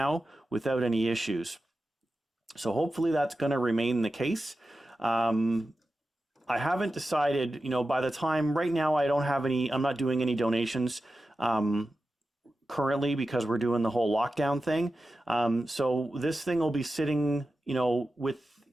without any issues. So hopefully that's going to remain the case. I haven't decided, by the time right now, I'm not doing any donations currently because we're doing the whole lockdown thing. So this thing will be sitting, with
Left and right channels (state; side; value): normal; both; correlation 0.93